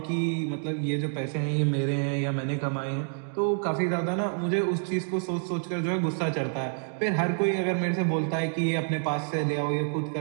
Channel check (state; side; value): silent; left; 59 dB below the other